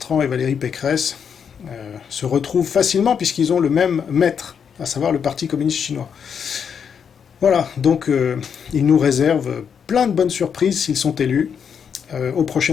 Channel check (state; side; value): quieter; right; 7.2 dB